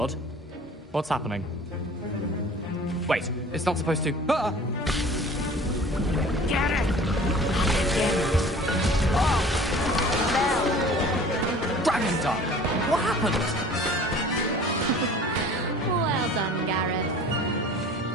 What's happening? Wait, it's not supposed to... Ah! Get it! Dragon Dog! What happened? Well done, Gareth.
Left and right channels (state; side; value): normal; both; correlation 0.46